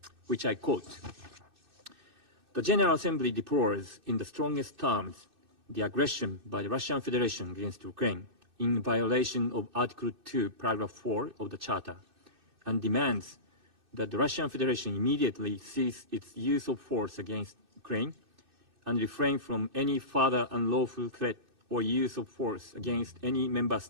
which I quote: "The General Assembly deplores in the strongest terms the aggression by the Russian Federation against Ukraine in violation of Article 2, Paragraph 4 of the Charter, and demands that the Russian Federation immediately cease its use of force against Ukraine and refrain from any further unlawful threat or use of force against any member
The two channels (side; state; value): left; late; 2.6 ms